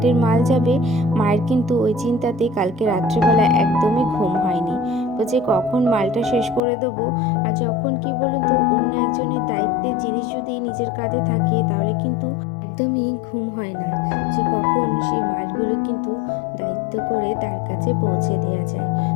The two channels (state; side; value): drops out; right; at 6.6 s